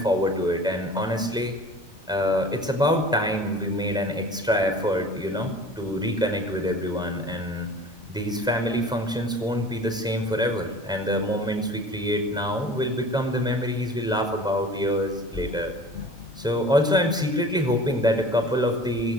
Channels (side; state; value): both; normal; correlation 0.43